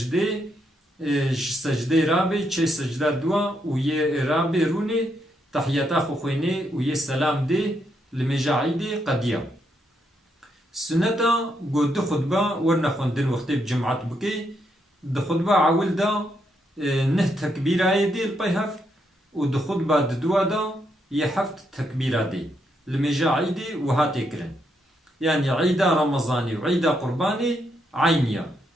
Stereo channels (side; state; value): both; normal; correlation 0.78